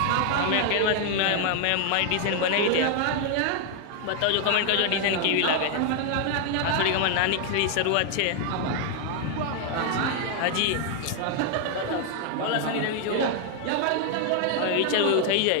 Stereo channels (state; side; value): different; both; correlation 0.00